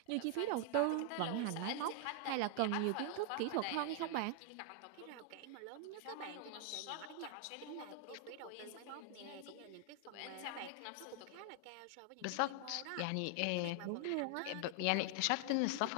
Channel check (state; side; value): different; both; correlation 0.00